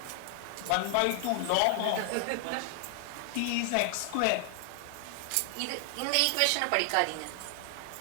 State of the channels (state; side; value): different; both; correlation 0.00